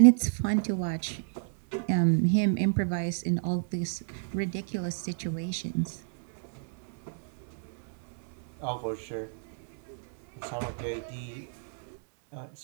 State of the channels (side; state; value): left; silent; 58 dB below the other